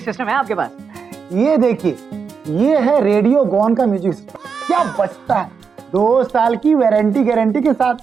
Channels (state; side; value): quieter; left; 5.9 dB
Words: सिस्टम है आपके पास? ये देखिए, ये है रेडियो गॉन का म्यूजिक सिस्टम। क्या बचता है, 2 साल की वारंटी गारंटी के साथ।